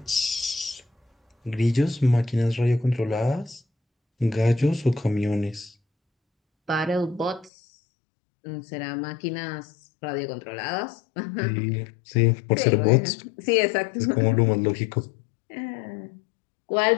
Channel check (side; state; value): right; drops out; at 7.5 s